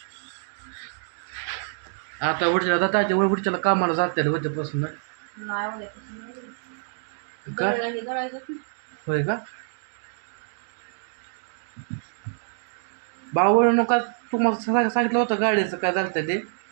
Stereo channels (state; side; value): silent; left; digital silence